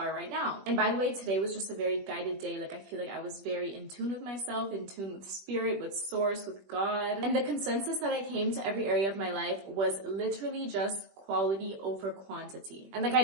right now. And by the way, today was just a very guided day. Like, I feel like I was very in tune with myself, in tune with spirit, with source, with God. And the consensus that I came to every area of my life was literally just quality over quantity. And like, I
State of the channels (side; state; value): left; late; 21 ms